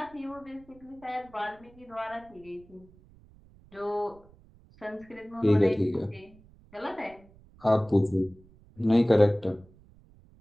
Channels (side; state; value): right; noise; rumble, 26 dB below the sound